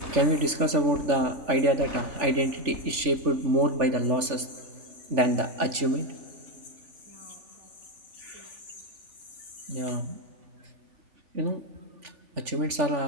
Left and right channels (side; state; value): left; late; 3.4 ms